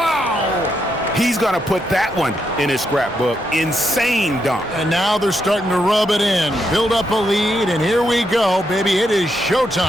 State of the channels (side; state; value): both; normal; correlation 0.80